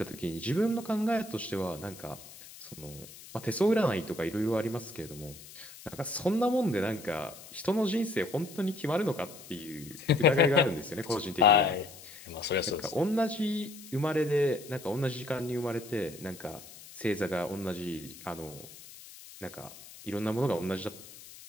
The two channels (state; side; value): noise; left; hiss, 17 dB below the sound